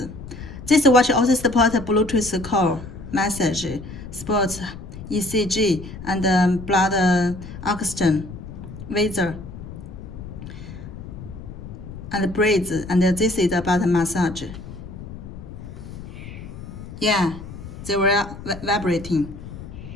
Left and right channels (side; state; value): left; noise; rumble, 12 dB below the sound